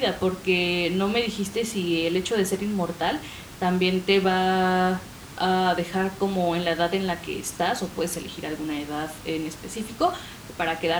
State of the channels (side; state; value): both; identical; correlation 1.00